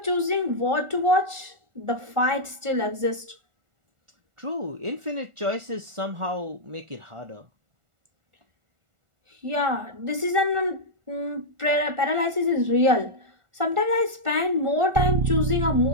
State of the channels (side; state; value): left; late; 1.4 ms